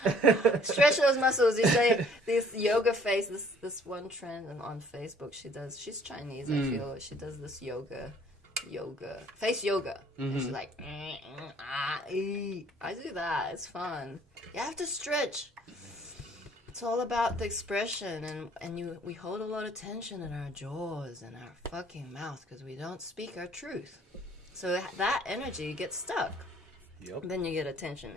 Stretch those muscles. You say this yoga face, this one trend on Facebook she's Chinese, I feel. She does this yoga face yoga. And she's like I do that. It's fun. You have to stretch. It's all about the expression, and we hold a lot of tension in our jaws and our fucking mouth because we don't speak our truth. So that energy gets stuck. Yep. Then you get a tension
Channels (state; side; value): normal; both; correlation 0.57